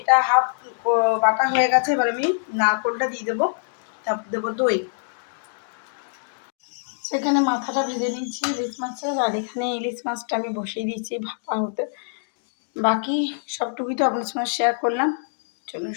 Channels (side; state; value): right; silent; digital silence